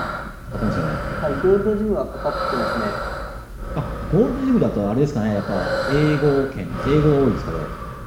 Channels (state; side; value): identical; both; correlation 1.00